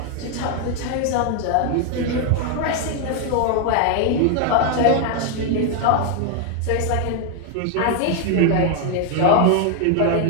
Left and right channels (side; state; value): both; different; correlation 0.00